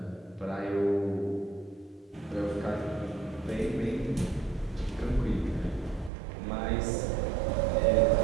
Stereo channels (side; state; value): left; drops out; at 6.1 s